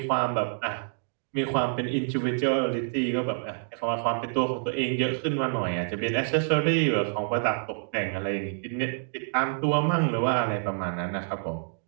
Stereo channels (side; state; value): left; silent; digital silence